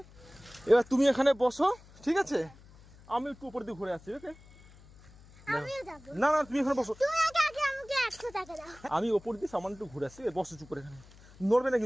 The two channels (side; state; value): left; noise; hum, 23 dB below the sound